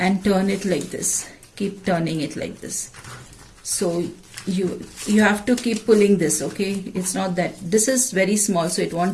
turn it like this. Keep turning it like this. So you have to keep pulling this, okay? It's not that this is very small, so it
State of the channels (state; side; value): identical; both; correlation 1.00